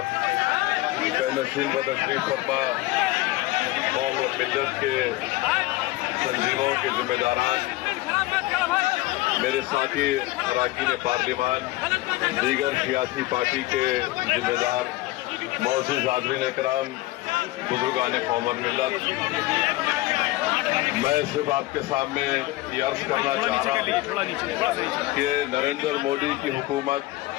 نشین و تشریف فرما قوم و ملت کے تنظیموں کے ذمہ داران، میرے ساتھی اراکین پارلیمان، دیگر سیاسی پارٹی کے ذمہ دار، معزز حاضرین اکرام، بزرگان قوم اور ملت، میں صرف آپ کے سامنے یہ عرض کرنا چاہ رہا ہوں کہ نریندر مودی کی حکومت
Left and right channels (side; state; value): right; quieter; 18.7 dB